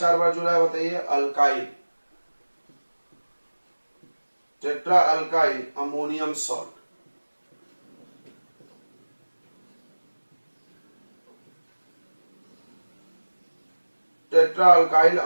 बार जुड़ा है बताइए, alkyl, tetra alkyl ammonium salt. Tetra alkyl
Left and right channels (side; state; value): both; inverted; correlation -1.00